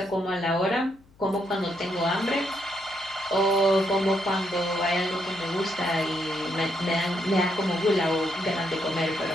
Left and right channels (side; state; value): left; noise; hum, 29 dB below the sound